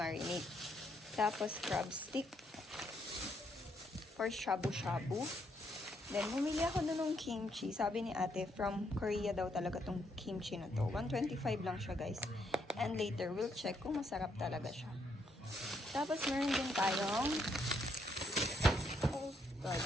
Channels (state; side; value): normal; both; correlation 0.74